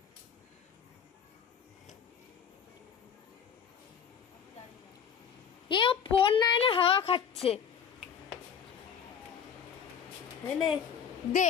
এ ফোন না এনে হাওয়া খাচ্ছে এনে দে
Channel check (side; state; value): right; quieter; 7.5 dB